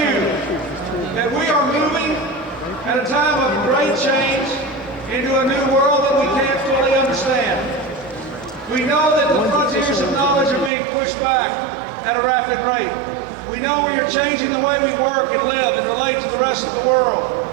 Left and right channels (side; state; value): left; drops out; at 10.7 s